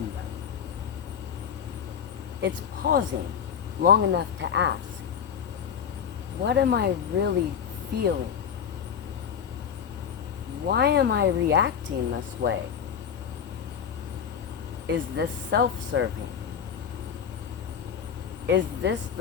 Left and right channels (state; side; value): quieter; right; 7.8 dB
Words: them. It's pausing long enough to ask, what am I really feeling? Why am I reacting this way? Is this self-serving? Is this